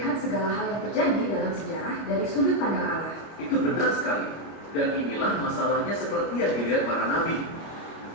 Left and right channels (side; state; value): right; late; 25 ms